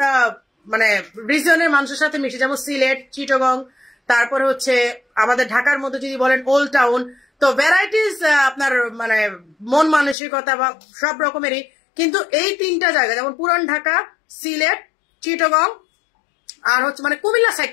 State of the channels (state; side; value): drops out; right; at 10.2 s